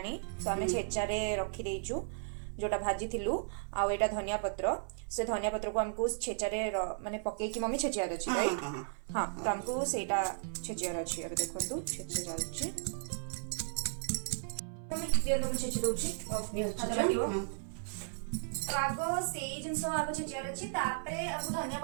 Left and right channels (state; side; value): silent; left; 54 dB below the other